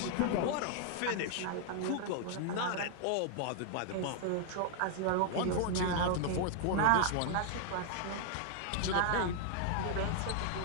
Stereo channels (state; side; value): different; both; correlation 0.00